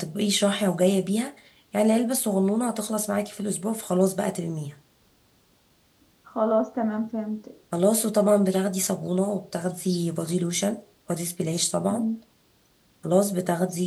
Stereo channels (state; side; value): identical; both; correlation 1.00